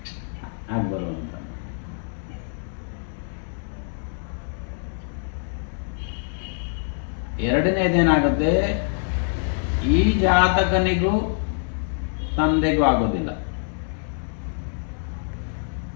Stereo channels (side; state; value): right; silent; 61 dB below the other